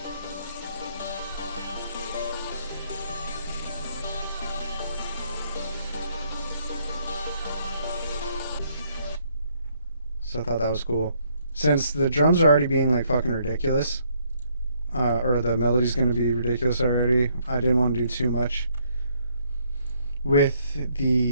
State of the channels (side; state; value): both; inverted; correlation -0.69